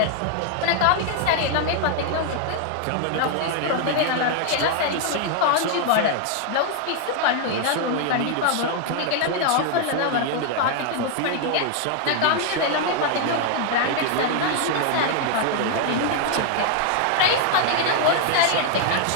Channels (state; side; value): different; both; correlation 0.00